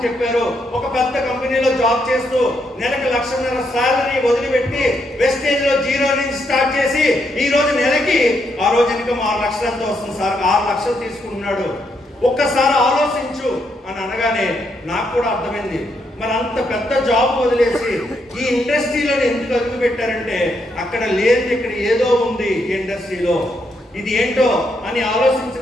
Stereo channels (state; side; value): normal; both; correlation 0.78